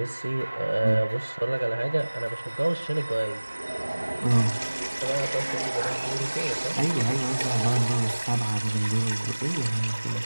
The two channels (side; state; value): both; inverted; correlation -1.00